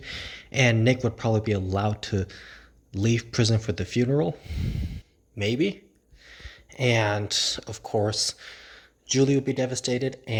and Nick would probably be allowed to leave prison for the funeral. Maybe. And, of course, Julie would be devastated,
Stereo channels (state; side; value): identical; both; correlation 1.00